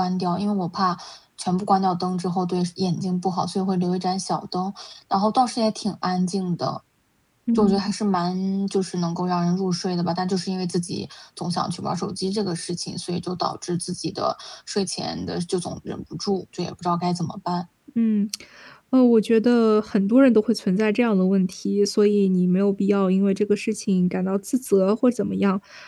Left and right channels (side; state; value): both; identical; correlation 1.00